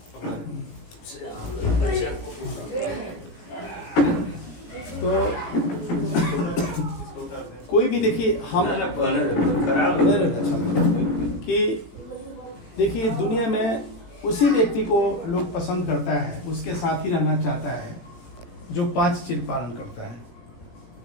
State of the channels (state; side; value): late; right; 18 ms